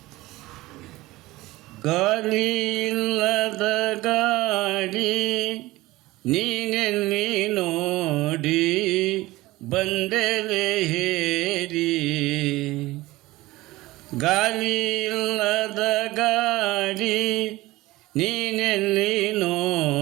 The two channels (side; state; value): left; quieter; 19.0 dB